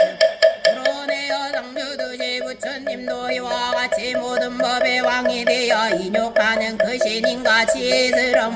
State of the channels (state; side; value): identical; both; correlation 1.00